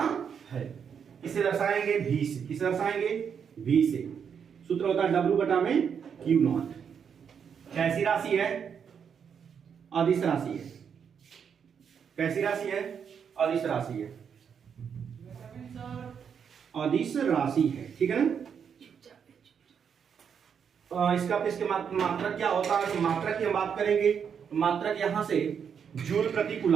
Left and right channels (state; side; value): quieter; left; 7.2 dB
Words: है। इसे दर्शाएंगे V से। किसे दर्शाएंगे? V से। सूत्र होता है W बटा में Q नॉट। कैसी राशि है? अदिश राशि है। कैसी राशि है? अदिश राशि है। अदिश राशि है, ठीक है ना। इसका इसके मात्रक क्या होता है? मात्रक की हम बात करेंगे, मात्रक यहां से जूल प्रति